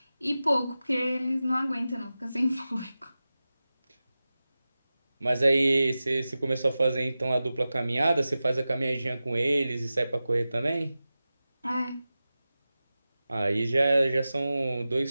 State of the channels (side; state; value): both; inverted; correlation -0.95